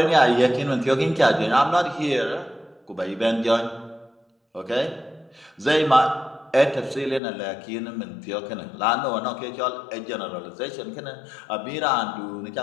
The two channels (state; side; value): drops out; right; at 7.2 s